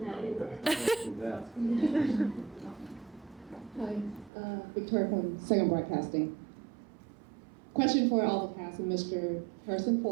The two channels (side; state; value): left; drops out; at 4.3 s